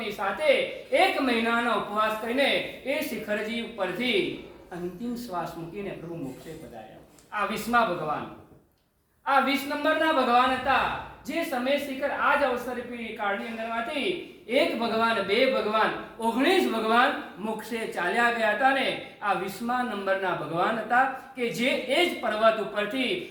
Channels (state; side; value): identical; both; correlation 1.00